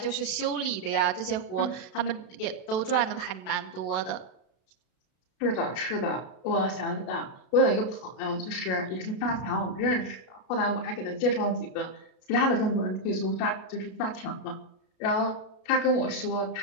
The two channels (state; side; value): late; right; 32 ms